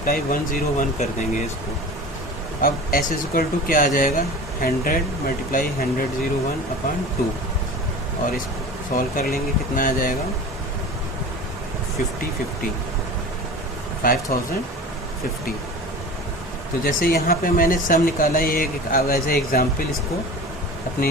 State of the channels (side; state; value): both; normal; correlation 0.36